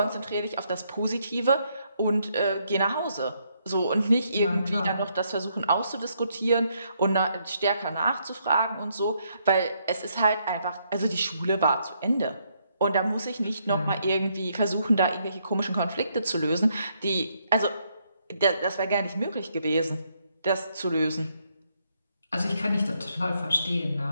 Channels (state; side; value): inverted; both; correlation -0.74